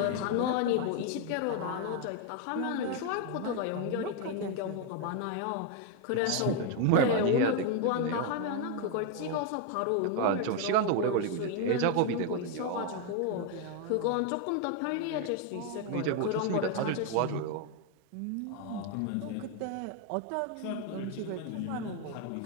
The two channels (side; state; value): both; different; correlation 0.01